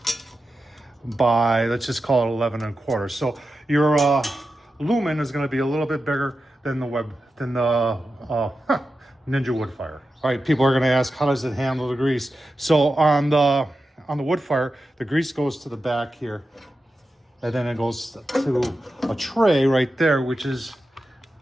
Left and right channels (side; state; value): both; normal; correlation 0.91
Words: by, let's just call it 11.25. So your Lumin is going to be a little bit bigger than the Ninja Woodfire. All right, people are going to ask, how does it handle the grease? So on the Woodfire, the grease goes to the back here, and then it goes to a tray right there, which is